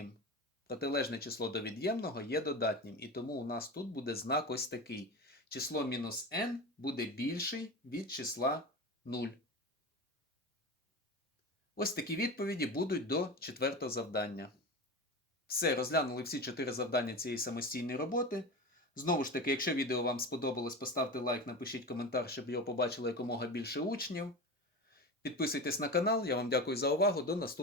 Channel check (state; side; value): normal; both; correlation 0.27